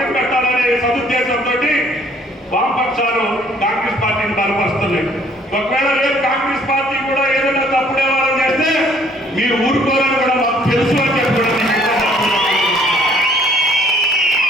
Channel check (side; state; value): both; normal; correlation 0.60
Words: పెట్టాలనే సదుద్దేశంతో వామపక్షాలు కాంగ్రెస్ పార్టీని బలపరుస్తున్నాయి. ఒకవేళ రేపు కాంగ్రెస్ పార్టీ కూడా ఏదైనా తప్పుడు వ్యవహారం చేస్తే మీరు ఊరుకోవాలని కూడా మాకు తెలుసు అని చెప్పడం.